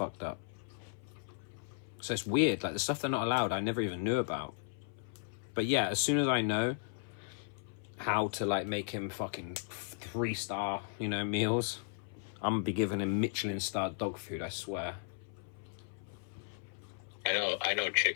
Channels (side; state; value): right; silent; 54 dB below the other